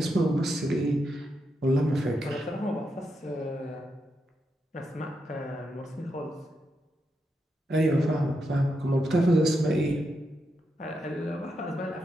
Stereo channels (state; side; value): normal; both; correlation 0.84